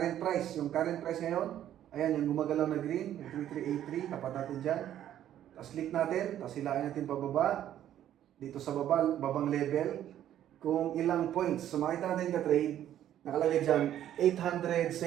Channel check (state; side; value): quieter; left; 11.4 dB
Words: price. Yung current price ngayon, ayan, yung gumagalaw na green, yung 3383, tapat natin dyan. Tapos click natin, tapos hilain natin pababa. Dito sa babang level, kung ilang points. So makita natin ka-trade, nakalagay dyan,